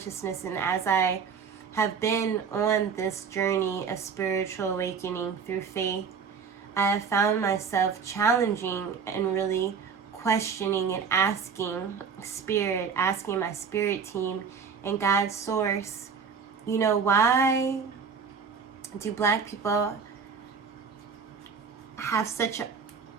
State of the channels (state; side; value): quieter; left; 6.1 dB